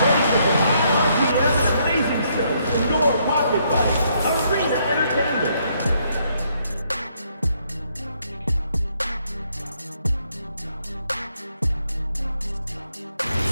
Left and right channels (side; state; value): both; inverted; correlation -0.72